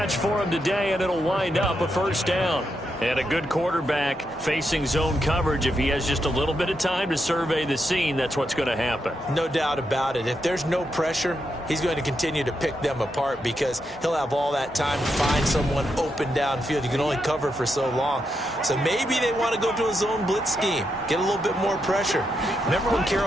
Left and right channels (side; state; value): both; normal; correlation 0.83